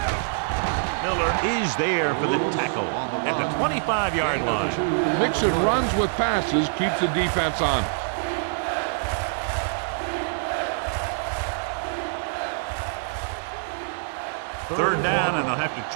Miller is there for the tackle at the 25-yard line. Mixing runs with passes keeps the defense on. Third down, and they'll have to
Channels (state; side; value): silent; left; 62 dB below the other